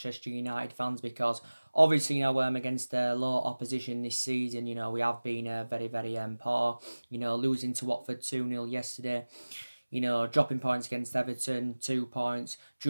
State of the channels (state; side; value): inverted; both; correlation -1.00